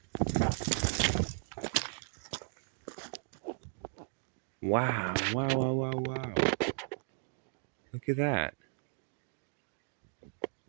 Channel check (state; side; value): silent; left; digital silence